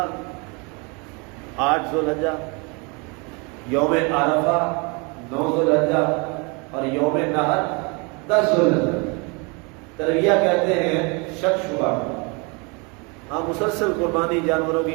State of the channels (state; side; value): quieter; left; 30.9 dB